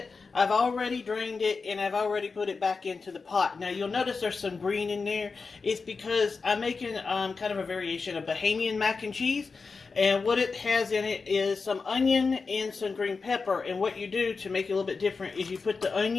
I've already drained it, and I've already put it back into the pot. Now, you'll notice there's some green in there. It's because I'm making kind of a variation of Bahamian mac and cheese. And what it has in it is some onion and some green pepper. And what you do to make it a little bit different is you put the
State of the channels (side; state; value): right; quieter; 4.6 dB